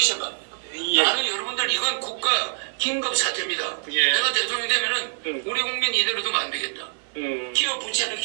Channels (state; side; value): silent; left; digital silence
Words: 생각합니까? 예. 나는 여러분들 이건 국가 긴급 사태입니다. 예. 내가 대통령이 되면은 우리 국민 이대로 두면 안 되겠다. 기업 부채는